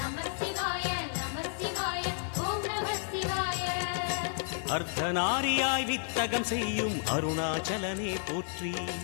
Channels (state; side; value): silent; right; 57 dB below the other